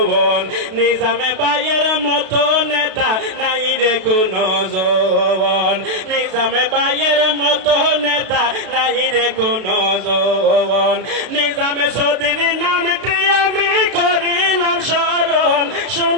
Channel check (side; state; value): left; late; 32 ms